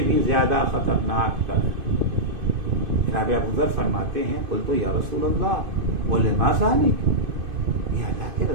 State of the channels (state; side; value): late; left; 2.5 ms